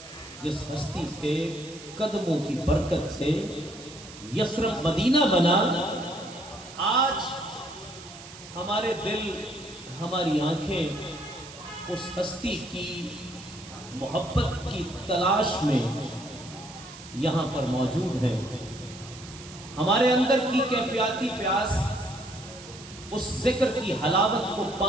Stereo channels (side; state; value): right; noise; hiss, 16 dB below the sound